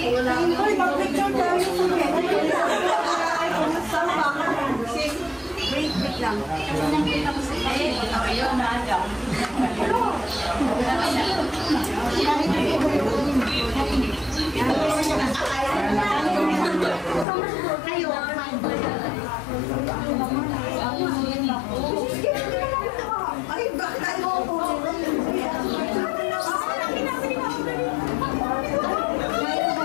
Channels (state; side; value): drops out; right; at 17.2 s